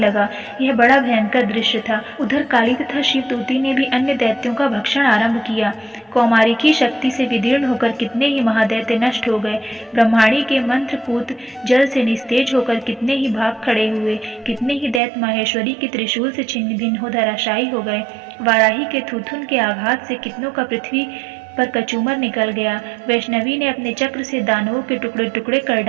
यह बड़ा भयंकर दृश्य था। उधर काली तथा शिवदूती ने भी अन्य दैत्यों का भक्षण आरंभ किया। कौमारी की शक्ति से विदीर्ण होकर कितने ही महादैत्य नष्ट हो गए। ब्रह्माणी के मंत्रपूत जल से निस्तेज होकर कितने ही भाग खड़े हुए। कितने ही दैत्य माहेश्वरी के त्रिशूल से छिन्न भिन्न हो धराशायी हो गए। वाराही के थूथुन के आघात से कितनों का पृथ्वी पर कचूमर निकल गया। वैष्णवी ने अपने चक्र से दानवों के टुकड़े टुकड़े कर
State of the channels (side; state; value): left; drops out; at 15.0 s